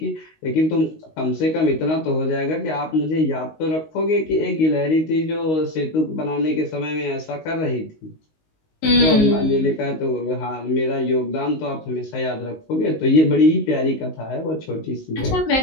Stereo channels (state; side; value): late; right; 19 ms